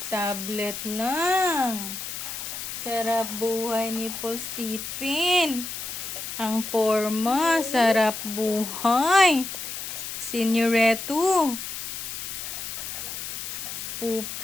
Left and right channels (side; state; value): left; noise; hiss, 7 dB below the sound